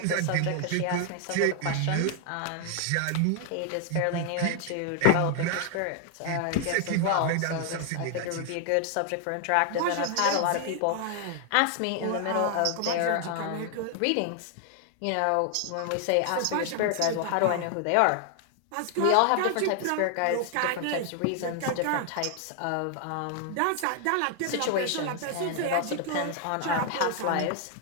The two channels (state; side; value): different; both; correlation 0.00